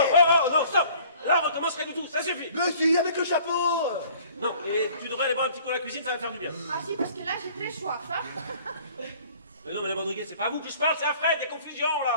Non, stop. Là, on recommence rien du tout, ça suffit. Mais si, avec le chapeau. Non, et tu devrais aller boire un petit coup à la cuisine, ça va te faire du bien. Ah si, parce que là, j'ai très soif, hein. Mais non, madame Rodriguez, c'est pas à vous que je parle, c'est à Fred, des confusions,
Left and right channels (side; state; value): both; inverted; correlation -0.52